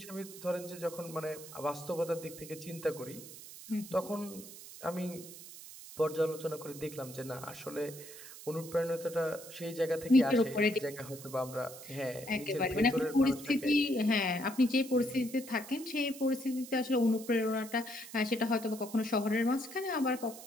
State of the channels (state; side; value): noise; right; hiss, 15 dB below the sound